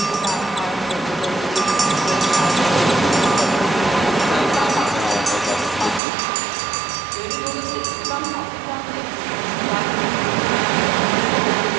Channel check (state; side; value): drops out; left; at 6.0 s